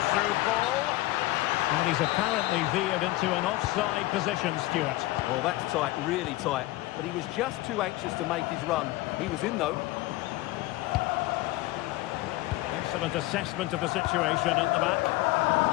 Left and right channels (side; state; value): right; quieter; 18.4 dB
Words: through ball. And he's apparently veered into an offside position, Stuart. Well, that's tight, really tight. But he was just too anxious to make his run. He was in, though. Excellent assessment of the situation at the back.